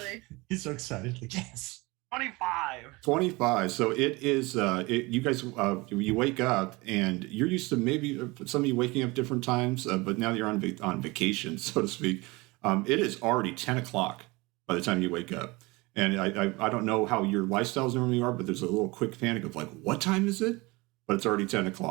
He's so excited. Like, yes. 25. So it is. You guys, you wake up, and you're used to maybe some of you waking up different times, but now you're on vacation, so to speak. It is already 10 o'clock by the time you wake up. And I don't know how your lifestyles normally are, but there's a little quick panic of like, what time is it? But it's already 10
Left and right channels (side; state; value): left; quieter; 23.7 dB